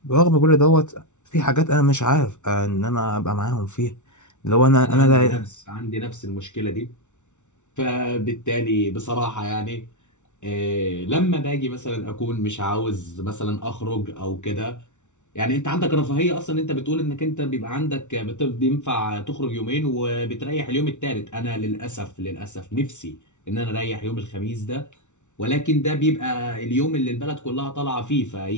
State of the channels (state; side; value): late; right; 0.84 ms